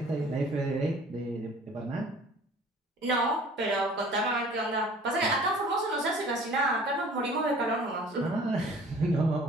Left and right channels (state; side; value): normal; both; correlation 0.49